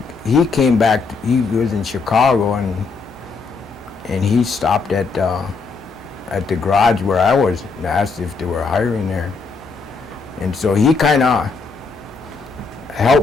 came back. He was in Chicago, and he stopped at the garage where I was and asked if they were hiring there. And so he kind of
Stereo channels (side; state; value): right; quieter; 4.5 dB